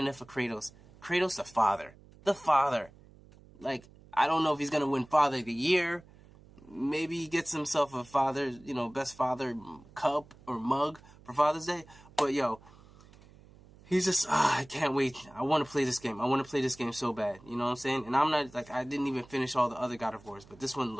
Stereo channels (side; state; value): right; noise; hum, 24 dB below the sound